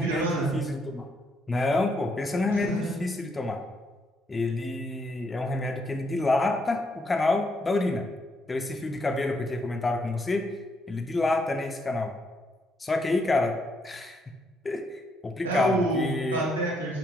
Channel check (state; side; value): normal; both; correlation 0.75